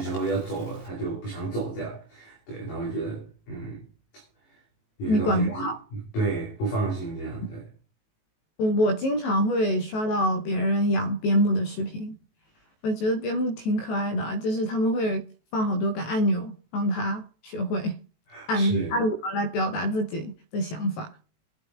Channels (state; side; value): late; right; 18 ms